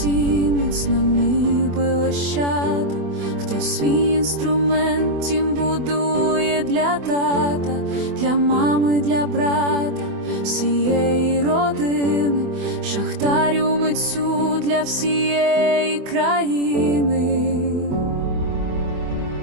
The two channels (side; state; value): left; late; 24 ms